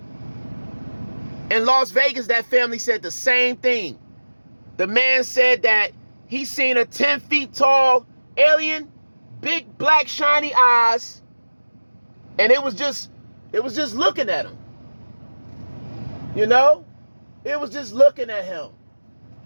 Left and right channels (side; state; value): both; inverted; correlation -1.00